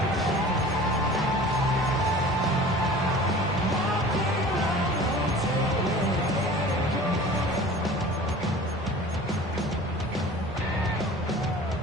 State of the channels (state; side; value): normal; both; correlation 0.42